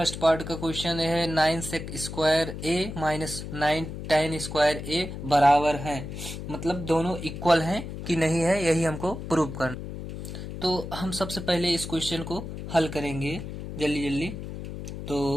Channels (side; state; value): left; noise; hum, 8 dB below the sound